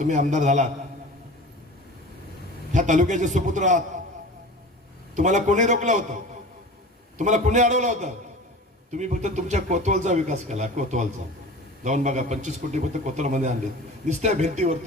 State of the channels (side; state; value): both; normal; correlation 0.37